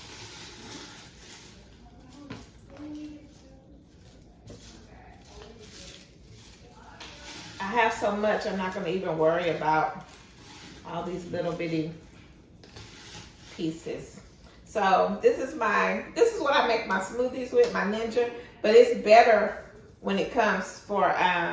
I have so much, I'm not going to even worry about all these little bitty pieces. So this is what I make my smoothies with, my Ninja, but it's better when it comes for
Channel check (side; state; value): both; identical; correlation 1.00